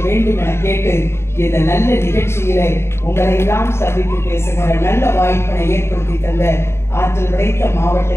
வேண்டும் என கேட்டு இந்த நல்ல நிகழ்ச்சியிலே உங்களை எல்லாம் சந்தித்து பேசுகிற நல்ல வாய்ப்பினை ஏற்படுத்தி தந்த ஆற்றல் படைத்த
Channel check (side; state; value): right; late; 0.12 ms